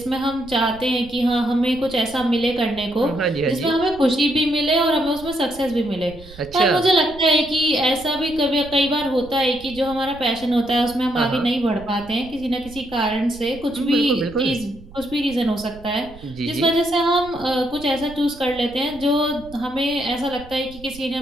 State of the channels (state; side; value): noise; right; rumble, 19 dB below the sound